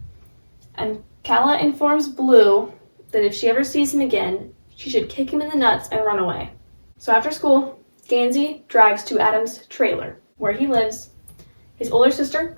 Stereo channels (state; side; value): inverted; both; correlation -1.00